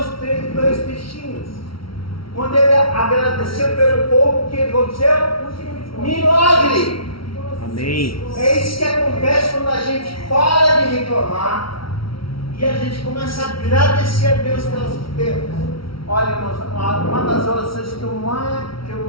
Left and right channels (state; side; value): late; right; 0.75 ms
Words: e 2 peixinhos. Quando ele agradeceu pelo pouco, o que aconteceu? Milagre! Amém. É isso que acontece quando a gente para de reclamar e a gente começa a agradecer a Deus pelas coisas. Olha, irmãos, uma das orações que eu